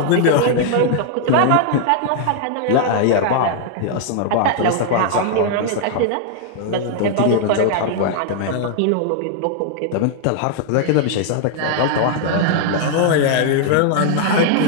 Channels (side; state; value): both; different; correlation 0.00